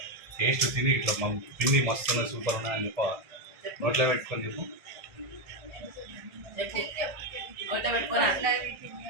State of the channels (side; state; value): left; late; 1.7 ms